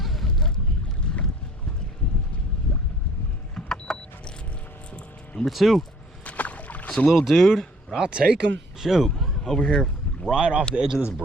Number two. It's a little dude, but I'll take him. Shoot, over here right off the edge of this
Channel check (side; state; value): both; normal; correlation 0.55